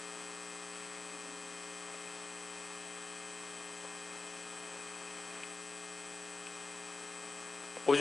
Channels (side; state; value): right; quieter; 3.6 dB